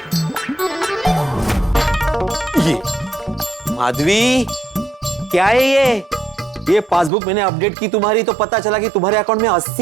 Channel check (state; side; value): drops out; left; at 7.1 s